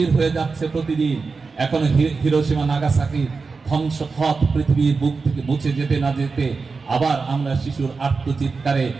হয়ে যাচ্ছে প্রতিদিন। এখন হিরোশিমা নাগাসাকি ধ্বংসপথ পৃথিবীর বুক থেকে মুছে যেতে না যেতে আবার আমরা শিশুর আত্মচিৎকারে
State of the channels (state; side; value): quieter; left; 4.5 dB